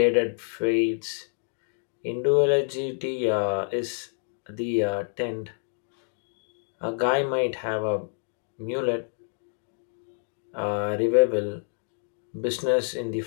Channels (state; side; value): silent; right; digital silence